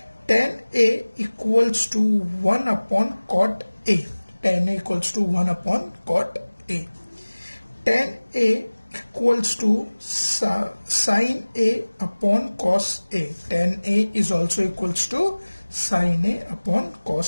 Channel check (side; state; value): both; inverted; correlation -1.00